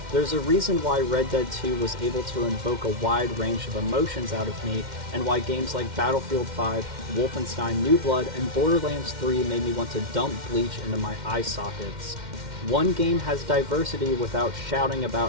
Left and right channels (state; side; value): late; left; 2.1 ms